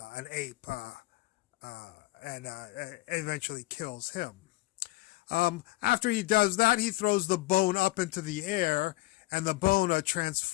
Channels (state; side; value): quieter; right; 19.3 dB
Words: ape and eventually kills him. After he does that, he throws the bone up into the air, and the bone